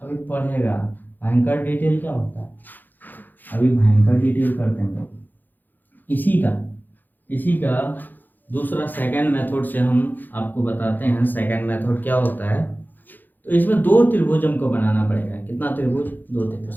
पढ़ेगा। भयंकर डिटेल क्या होता है? अभी भयंकर डिटेल करते हैं लोग। इसी का दूसरा सेकंड मेथड से हम आपको बताते हैं। सेकंड मेथड क्या होता है? तो इसमें 2 त्रिभुज हमको बनाना पड़ेगा। कितना त्रिभुज? 2 त्रिभुज।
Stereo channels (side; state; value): right; late; 0.087 ms